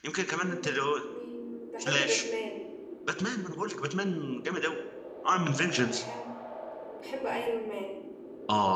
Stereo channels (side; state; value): both; identical; correlation 1.00